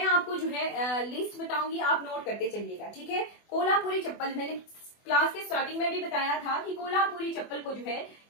आपको जो है लिस्ट बताऊंगी, आप नोट करते चलिएगा, ठीक है। कोल्हापुरी चप्पल, मैंने क्लास के स्टार्टिंग में भी बताया था कि कोल्हापुरी चप्पल को जो है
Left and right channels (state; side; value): late; right; 24 ms